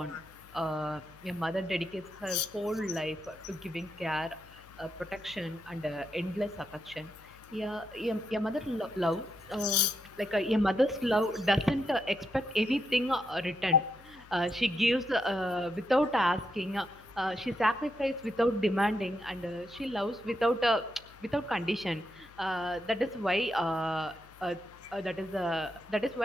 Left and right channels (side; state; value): left; noise; hum, 24 dB below the sound